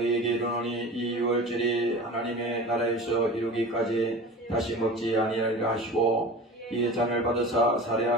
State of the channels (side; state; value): both; normal; correlation 0.36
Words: 이르노니 이 유월절이 하나님의 나라에서 이루기까지 다시 먹지 아니하리라 하시고 이에 잔을 받으사